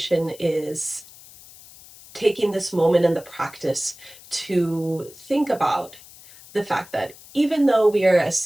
is taking this moment in the practice to think about the fact that even though we are a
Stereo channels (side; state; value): left; noise; hiss, 21 dB below the sound